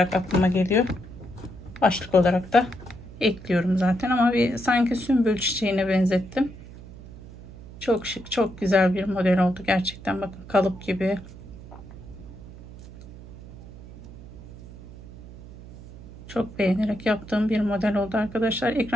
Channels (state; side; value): noise; right; hum, 16 dB below the sound